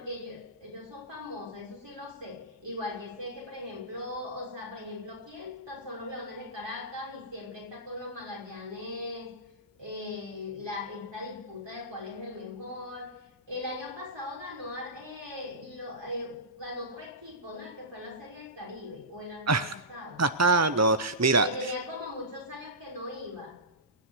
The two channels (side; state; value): both; normal; correlation -0.19